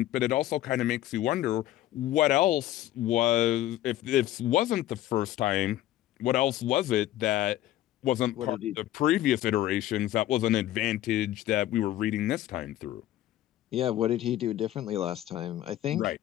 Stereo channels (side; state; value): right; quieter; 13.7 dB